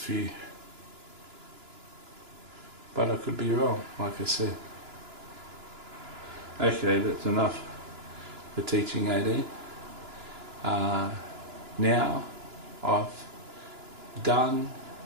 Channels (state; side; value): late; left; 2.9 ms